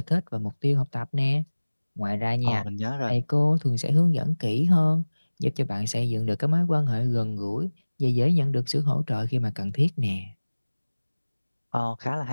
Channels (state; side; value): inverted; both; correlation -1.00